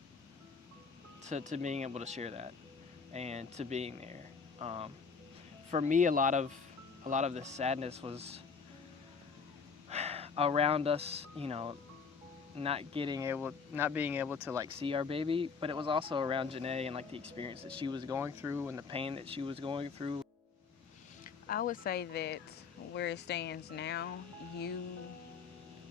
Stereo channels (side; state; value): right; quieter; 5.4 dB